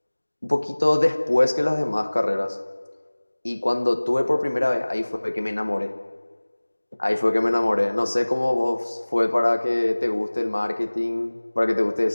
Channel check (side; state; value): both; inverted; correlation -1.00